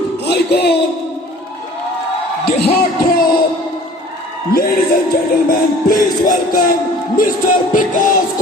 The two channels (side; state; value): both; normal; correlation 0.48